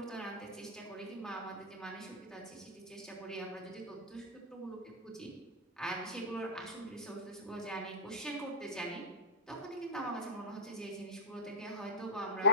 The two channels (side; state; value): both; normal; correlation -0.07